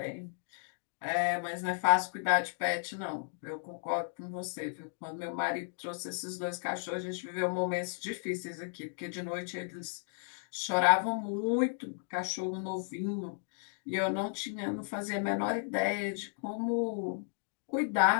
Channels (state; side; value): silent; right; digital silence